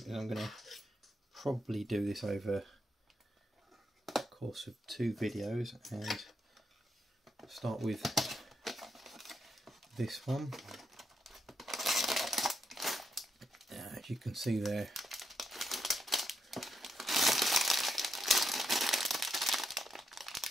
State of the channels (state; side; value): normal; both; correlation 0.81